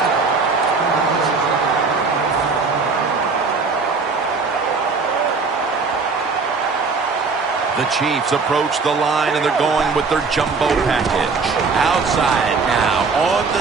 The Chiefs approach the line, and they're going with their jumbo package. Outside now on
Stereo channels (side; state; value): left; quieter; 4.5 dB